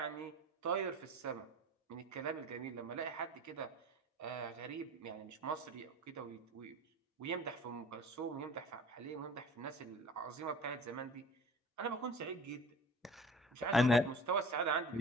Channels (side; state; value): both; normal; correlation 0.41